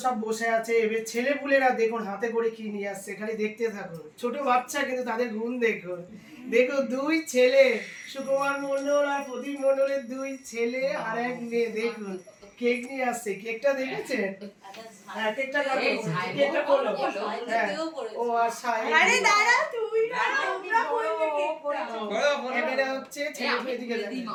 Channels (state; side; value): identical; both; correlation 1.00